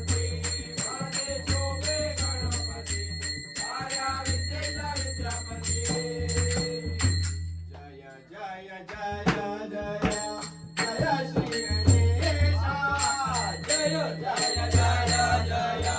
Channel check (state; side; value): identical; both; correlation 1.00